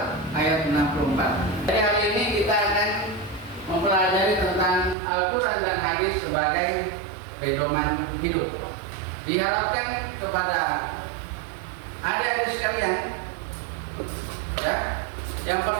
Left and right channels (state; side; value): drops out; left; at 5.0 s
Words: ayat 64. Jadi hari ini kita akan mempelajari tentang Al-Quran dan Hadis sebagai pedoman hidup. Diharapkan kepada adik-adik sekalian, ya, yang